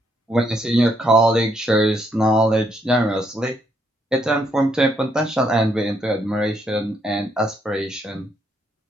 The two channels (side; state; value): both; normal; correlation 0.74